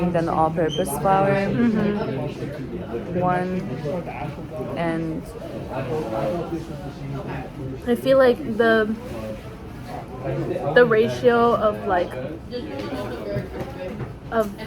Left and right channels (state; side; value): identical; both; correlation 1.00